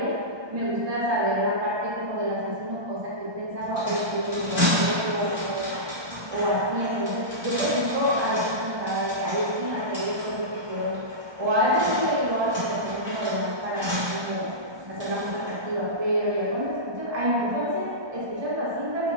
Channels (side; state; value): left; late; 1.2 ms